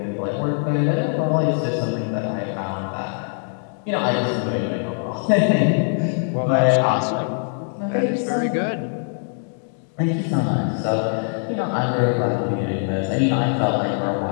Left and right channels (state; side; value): silent; right; 64 dB below the other